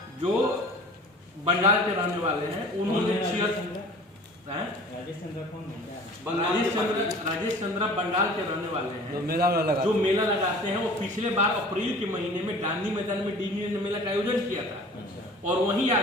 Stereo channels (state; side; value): normal; both; correlation 0.44